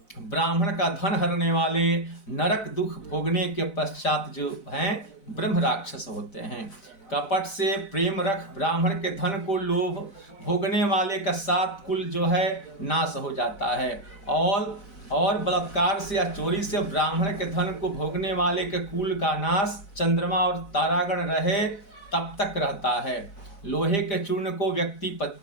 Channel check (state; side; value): late; right; 4.0 ms